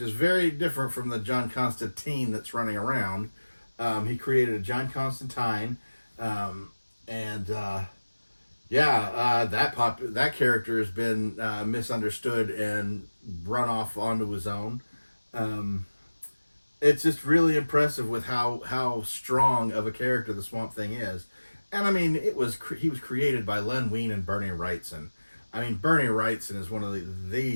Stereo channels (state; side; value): inverted; both; correlation -1.00